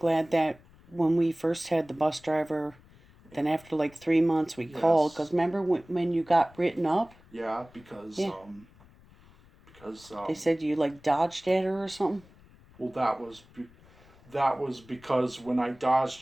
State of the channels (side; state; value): left; noise; rumble, 26 dB below the sound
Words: that when we first had the bus driver, then after like 3 months we called, because remember when you got written up? Yeah, because they said you like dodged at her or something. Well, that was because when I dodged